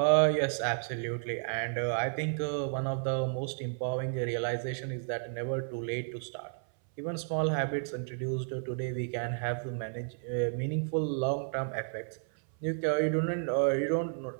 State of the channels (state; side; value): silent; left; 56 dB below the other